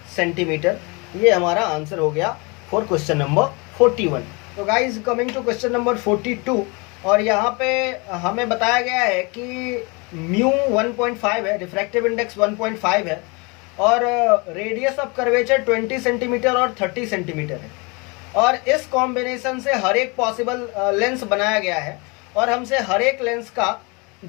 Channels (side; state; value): right; quieter; 29.1 dB